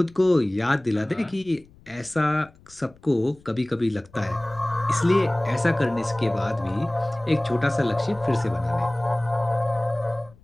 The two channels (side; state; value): left; noise; rumble, 26 dB below the sound